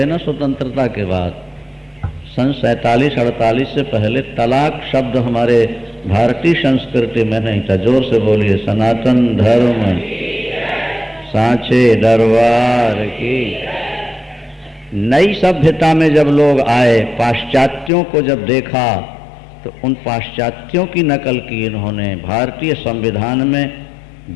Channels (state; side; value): drops out; right; at 17.9 s